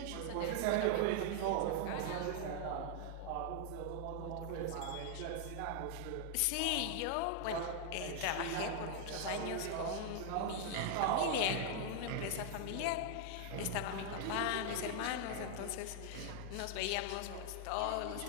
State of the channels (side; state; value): both; different; correlation 0.00